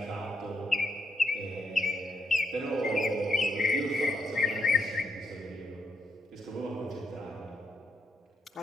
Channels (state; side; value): normal; both; correlation 0.79